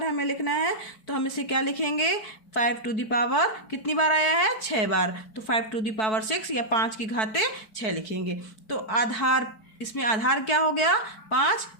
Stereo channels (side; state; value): right; late; 4.6 ms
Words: हमें लिखना है तो हम इसे क्या लिखेंगे, 5 टू द पावर कितनी बार आया है 6 बार, तो 5 टू द पावर 6 या 5 की घाते 6 लिखेंगे। तो आधार, इसमें आधार क्या हो गया 5,